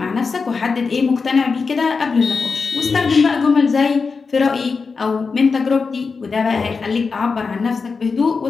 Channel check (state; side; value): quieter; right; 4.8 dB